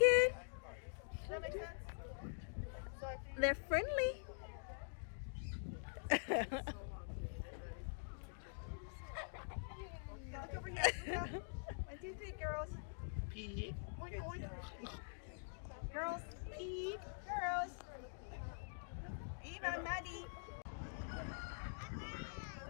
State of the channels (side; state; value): right; silent; digital silence